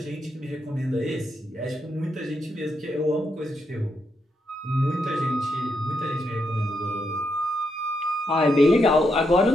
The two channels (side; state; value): both; normal; correlation 0.81